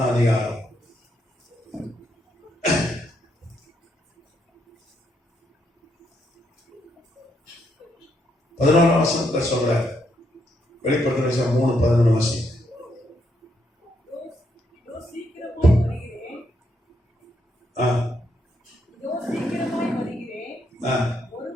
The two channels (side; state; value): both; normal; correlation 0.76